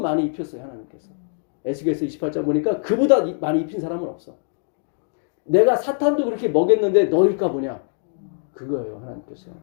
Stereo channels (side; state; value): right; silent; digital silence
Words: 입혔어요. 하나님께서. 에스겔서 28장 보니까 그보다 많이 입힌 사람은 없어. 내가 사탄도 그렇게 먹였는데 너일까 보냐. 그거예요. 하나님께서.